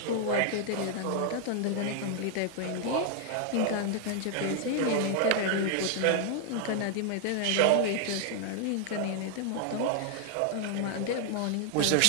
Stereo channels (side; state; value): both; different; correlation 0.00